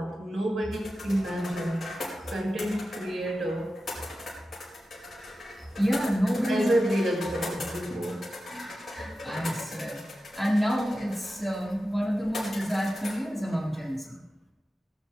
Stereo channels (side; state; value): both; normal; correlation 0.93